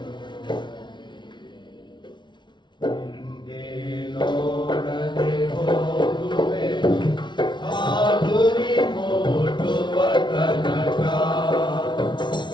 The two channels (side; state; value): right; late; 0.23 ms